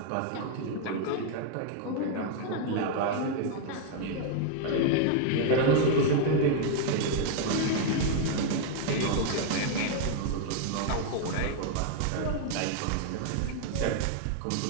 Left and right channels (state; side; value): different; both; correlation 0.00